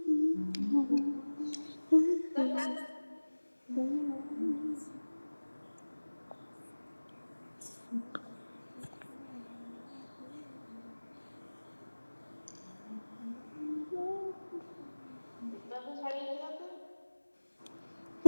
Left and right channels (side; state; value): both; inverted; correlation -1.00